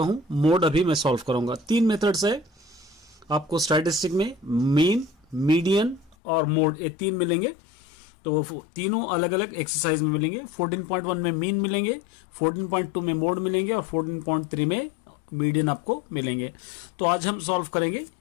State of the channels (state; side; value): drops out; right; at 6.2 s